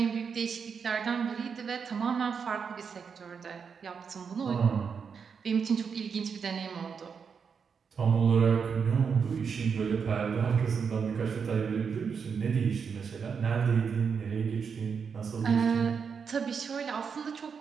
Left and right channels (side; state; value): left; quieter; 6.2 dB